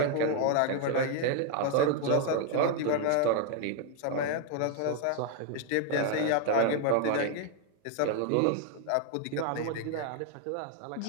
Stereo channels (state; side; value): different; both; correlation 0.00